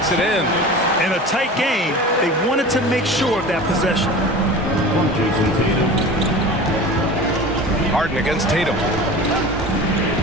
it in. In a tight game, they wanted to make sure of that possession. Harden against Tatum.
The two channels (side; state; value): both; normal; correlation 0.35